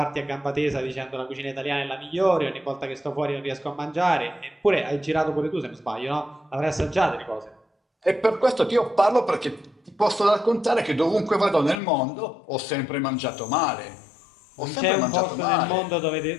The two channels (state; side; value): drops out; right; at 11.8 s